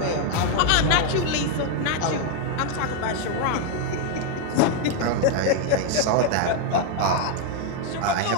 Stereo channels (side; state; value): both; different; correlation 0.01